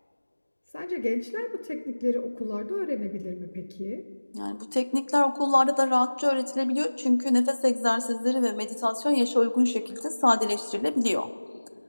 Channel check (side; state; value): both; inverted; correlation -1.00